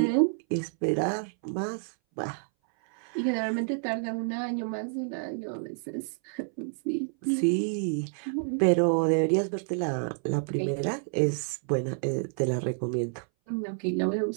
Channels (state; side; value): silent; left; 59 dB below the other